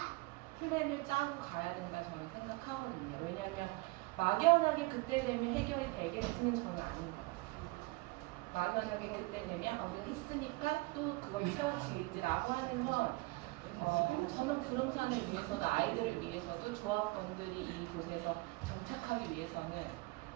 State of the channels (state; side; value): quieter; left; 24.2 dB